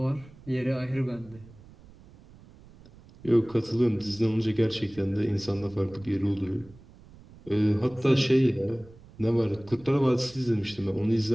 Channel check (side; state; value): right; noise; rumble, 23 dB below the sound